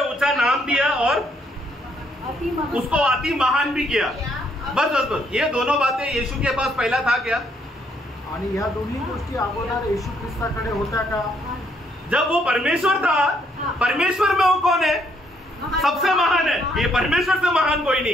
ऊंचा नाम दिया और उसको अति महान भी किया। बस बस बस, ये दोनों बातें यीशु के पास पहला था क्या? आणि ह्या दोन्ही गोष्टी अगोदर येशू ख्रिस्ताकडे होत्या का? जब वो परमेश्वर था, परमेश्वर में वो कौन है, सबसे महान है, ये परमेश्वर से महान कोई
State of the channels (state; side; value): normal; both; correlation 0.70